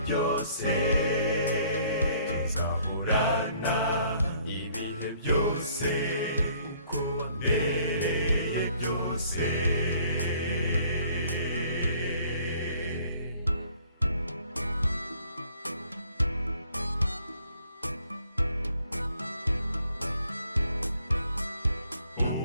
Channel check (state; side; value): inverted; both; correlation -0.61